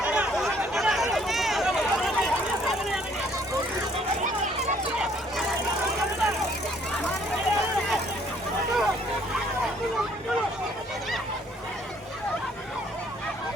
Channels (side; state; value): both; normal; correlation 0.62